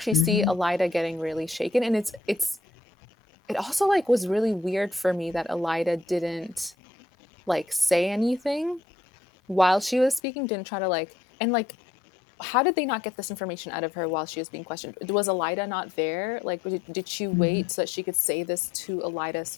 see Hmm. Elida getting really shaken. And it also like was really weird for me that Elida didn't like say anything while she was speaking. Didn't try to like and like how did they not get this information out of her while she was being questioned? Was Elida not there? Like, did she Hmm. wait so that she could say this to Elida's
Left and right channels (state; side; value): drops out; right; at 10.2 s